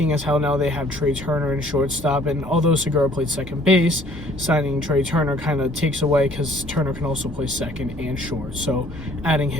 as how now they have Trey Turner in shortstop, and although Segura played second base, signing Trey Turner kind of takes away because Turner can also play second and short, so adding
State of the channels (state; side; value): normal; both; correlation 0.57